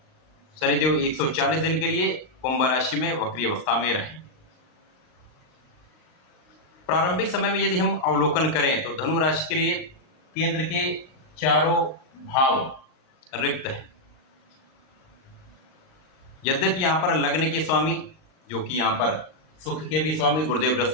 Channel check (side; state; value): right; late; 39 ms